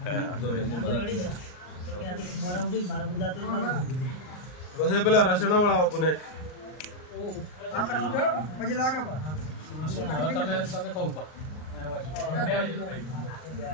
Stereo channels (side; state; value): right; late; 39 ms